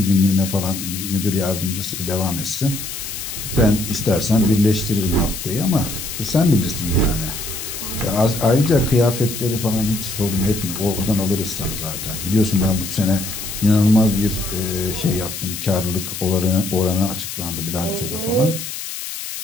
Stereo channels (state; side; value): noise; left; hiss, 7 dB below the sound